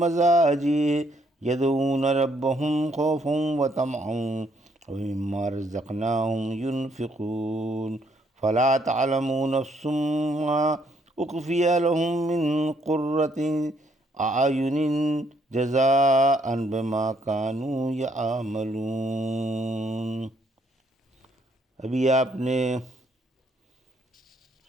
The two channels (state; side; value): normal; both; correlation 0.70